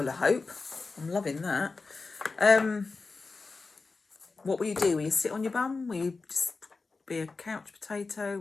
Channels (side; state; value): right; quieter; 4.1 dB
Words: of hope. I'm loving that. What will you do? Will you sit on your bum? Will you just be a couch potato?